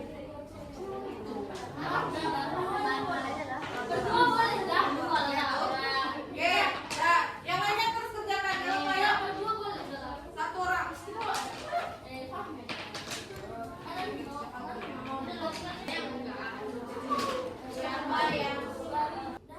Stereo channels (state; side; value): identical; both; correlation 1.00